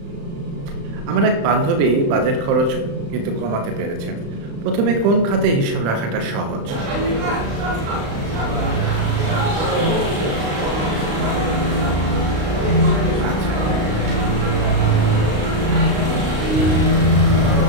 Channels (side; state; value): left; late; 35 ms